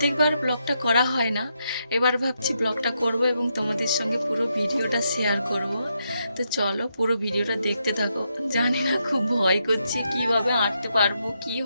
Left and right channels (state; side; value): inverted; both; correlation -0.81